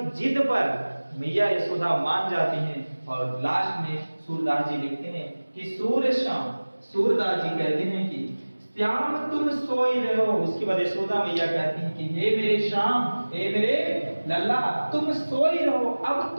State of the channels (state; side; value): inverted; both; correlation -1.00